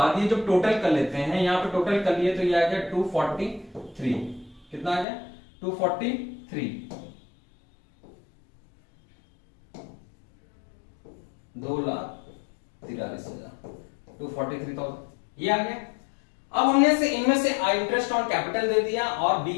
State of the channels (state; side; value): drops out; right; at 5.1 s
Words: ये जो टोटल कर लेते हैं, यहां पे टोटल कर लिए तो ये आ गया 243, कितना आ गया, 243, 2,43,000, 243,000 ये आ गया। अब हमने से इनमें से इंटरेस्ट ऑन कैपिटल दे दिया और